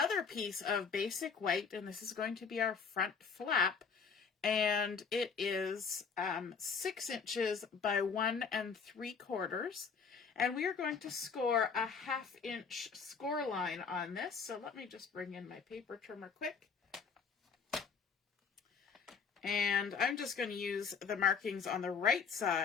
piece of basic white, and this is going to be our front flap, and it is 6 inches by 1 3/4, and we are going to score a 1/2 inch score line on this. So let me just bring in my paper trimmer quick. And I'm just going to use the markings on the right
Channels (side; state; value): right; quieter; 5.9 dB